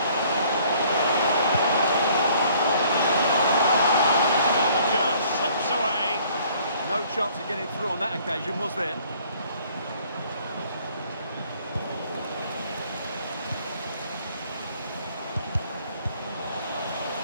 The chance of getting through on that occasion, was there?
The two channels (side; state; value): both; inverted; correlation -0.58